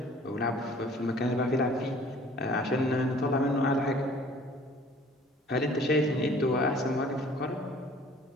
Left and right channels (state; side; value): normal; both; correlation 0.52